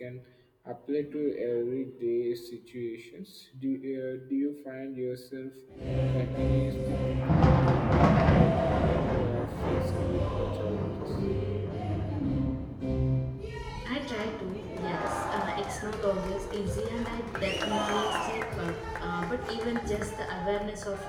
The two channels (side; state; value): both; identical; correlation 1.00